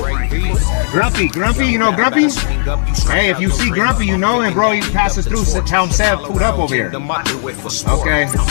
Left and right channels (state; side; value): silent; right; digital silence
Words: you know Grumpy? Hey, if you see Grumpy, you know him, bro. He passes through, tell him Sev pulled up over here. Okay,